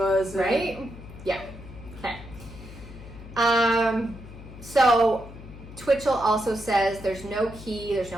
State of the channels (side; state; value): left; noise; hum, 15 dB below the sound